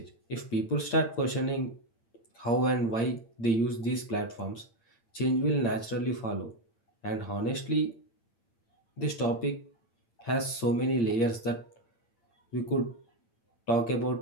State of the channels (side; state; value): right; late; 8.6 ms